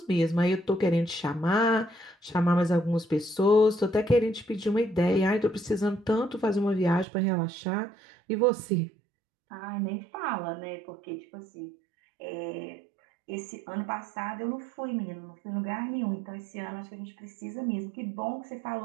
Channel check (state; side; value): drops out; left; at 7.1 s